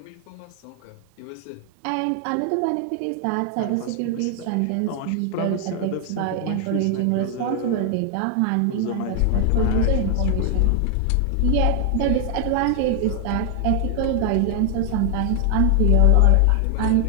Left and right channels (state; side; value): different; both; correlation 0.00